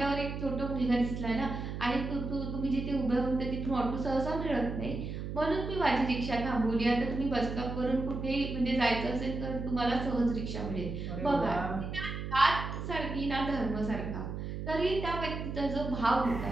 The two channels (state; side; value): noise; right; hum, 5 dB below the sound